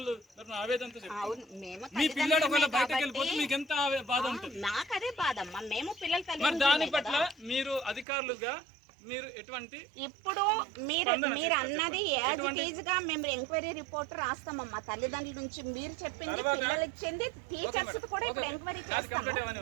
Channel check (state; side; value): drops out; left; at 8.1 s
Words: ఆవేదనతో చెప్తాను. మీ పిల్లడు ఒకవేళ బయటకు వెళ్ళిపోతే మీకు ఎంత బాధ ఉంటుంది? నాకు అదే బాధ అమ్మా. మేము పిల్లలు మరి దాని పట్ల మీరు అధికారులుగా మీరు ఎటువంటి ఇప్పుడు మీరు అన్నది యాజ్ ఇట్ ఈజ్ గా మేము ఎంక్వైరీ రిపోర్ట్ రాస్తామమ్మా. తల్లిదండ్రుల నుంచి మీరు చెప్పింది, పిల్లలు ఇచ్చింది, టీచర్స్ కూడా ఇప్పుడు ఎంక్వైరీ చేస్తాం.